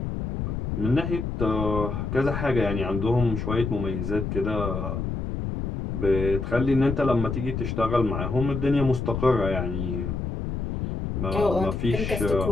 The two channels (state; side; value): noise; left; rumble, 3 dB below the sound